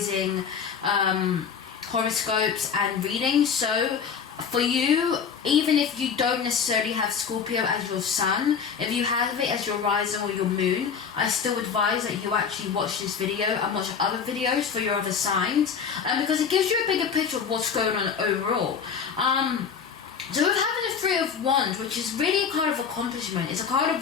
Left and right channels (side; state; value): right; quieter; 6.6 dB